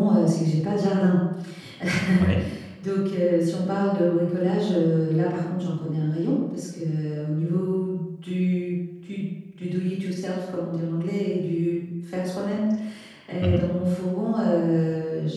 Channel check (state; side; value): identical; both; correlation 1.00